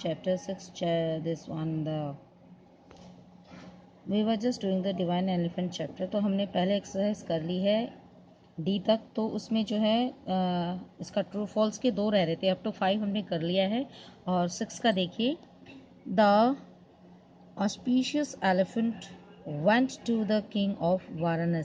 6 we were just doing the divine elephant chapter. तो हमने पहले exercise कर ली है D तक। तो उसमें जो है इसका ट्रू फॉल्स के 2 रह रहे थे, अप टू 5 हमने कर लिया है। और 6 का देखिए, the auspicious elephant went to the king of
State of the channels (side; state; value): both; identical; correlation 1.00